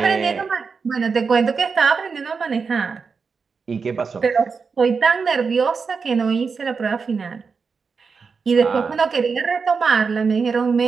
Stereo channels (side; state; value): left; quieter; 5.2 dB